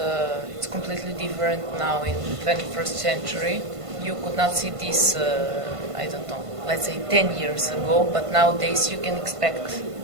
it's completely different now in the 21st century. You could not see this, I don't know, let's say 10 years ago, but nowadays you can expect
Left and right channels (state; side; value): late; left; 1.5 ms